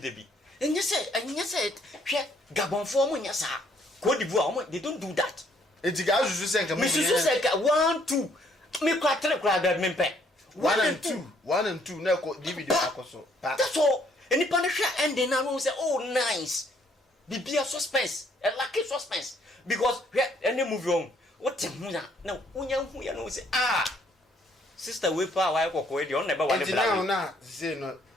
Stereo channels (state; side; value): normal; both; correlation 0.66